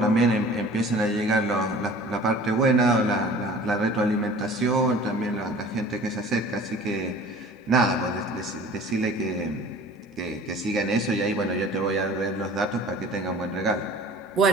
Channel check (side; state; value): both; normal; correlation 0.45